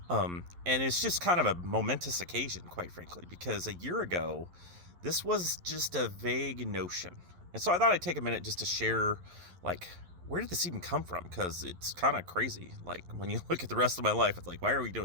And it's just kind of a momentous occasion, quite frankly, because a year ago, this was just a vague notion. And so I thought I'd take a minute just to share, like, where did this even come from? Because it's kind of crazy. Like, when you look at the rest of my life, it's like, why are we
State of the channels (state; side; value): late; left; 11 ms